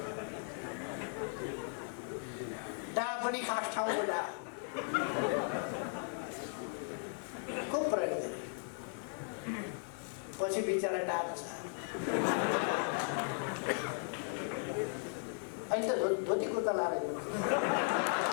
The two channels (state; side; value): silent; right; 53 dB below the other